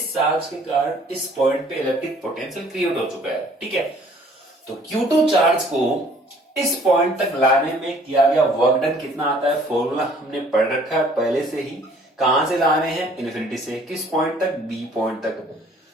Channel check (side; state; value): both; normal; correlation 0.57